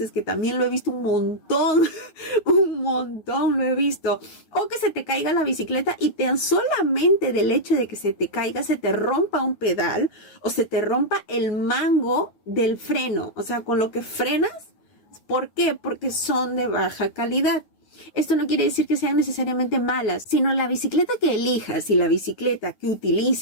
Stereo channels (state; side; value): late; right; 9.4 ms